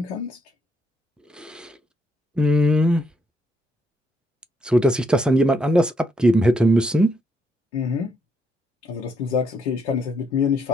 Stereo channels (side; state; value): both; normal; correlation 0.75